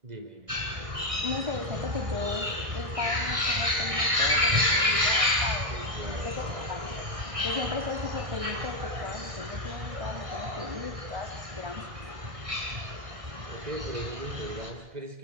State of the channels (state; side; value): late; left; 1.6 ms